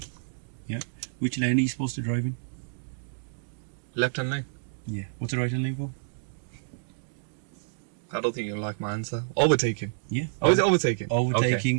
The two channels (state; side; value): silent; left; digital silence